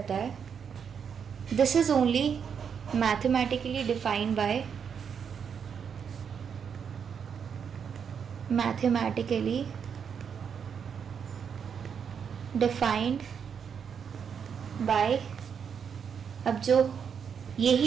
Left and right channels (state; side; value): quieter; left; 7.1 dB